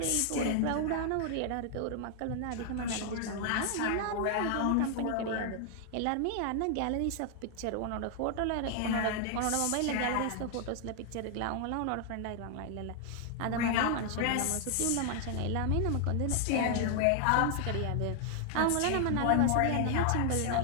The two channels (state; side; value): different; both; correlation 0.00